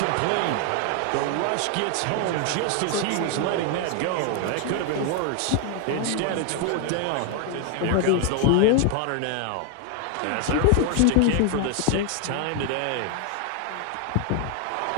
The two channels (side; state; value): both; different; correlation 0.00